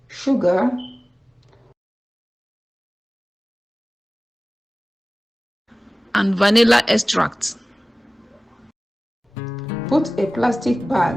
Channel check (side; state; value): both; normal; correlation 0.97